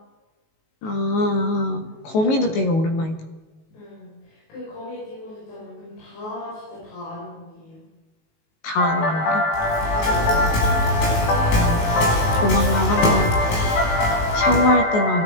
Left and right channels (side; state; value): right; late; 19 ms